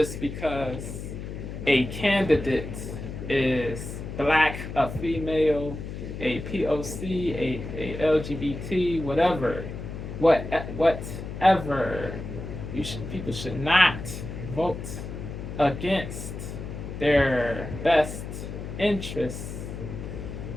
because a candidate is black, a female, a POC, a LGBT, whatever. People should not vote against their best interests.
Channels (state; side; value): noise; left; hum, 8 dB below the sound